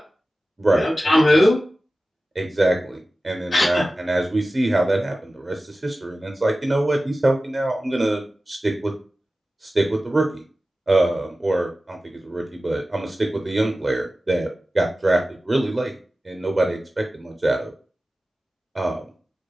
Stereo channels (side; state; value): both; normal; correlation 0.95